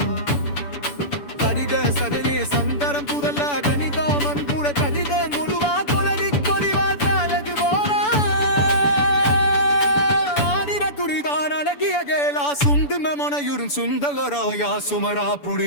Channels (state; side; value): late; right; 6.9 ms